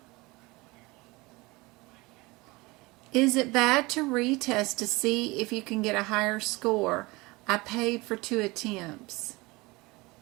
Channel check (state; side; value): quieter; left; 23.2 dB